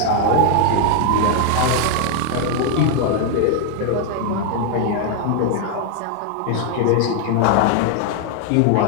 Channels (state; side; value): different; both; correlation 0.00